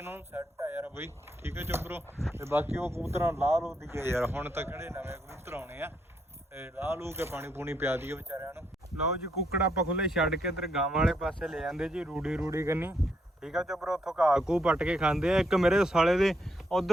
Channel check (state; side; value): normal; both; correlation 0.76